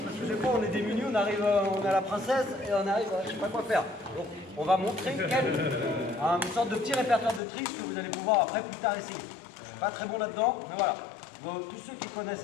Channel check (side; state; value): right; drops out; at 7.4 s